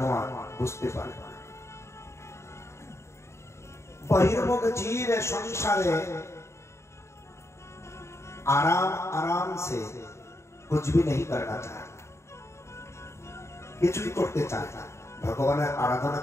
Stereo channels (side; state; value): right; late; 0.13 ms